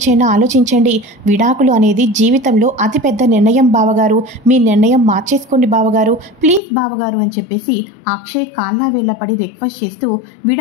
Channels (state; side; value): drops out; right; at 6.6 s